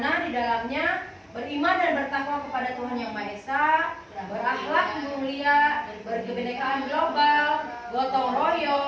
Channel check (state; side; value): identical; both; correlation 1.00